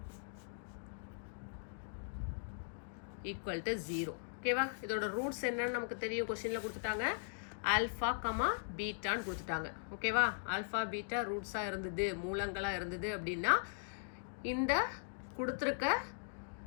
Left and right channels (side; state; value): right; silent; digital silence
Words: equal to 0. ஓகேவா, இதோட ரூட்ஸ் என்னன்னு நமக்கு தெரியும், கொஸ்டினில் கொடுத்துட்டாங்க ஆல்ஃபா, பீட்டான்னு கொடுத்துட்டாங்க. ஓகேவா, ஆல்ஃபா பீட்டா ரூட்ஸாக இருந்தது, மூலங்களாக இருந்தது அப்படின்னா இந்த கொடுத்துருக்க